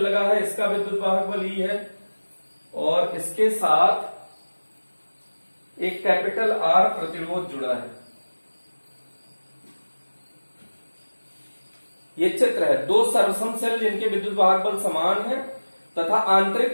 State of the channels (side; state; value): both; inverted; correlation -1.00